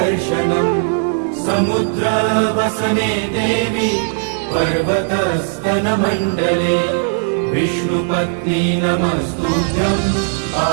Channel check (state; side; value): silent; left; 68 dB below the other